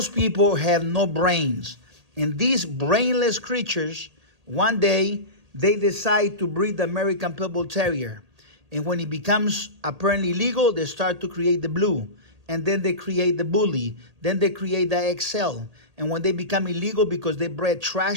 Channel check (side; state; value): left; late; 1.8 ms